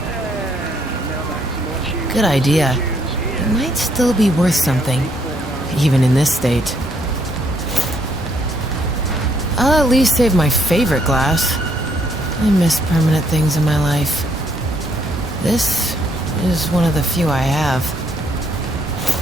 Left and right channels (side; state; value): both; normal; correlation 0.70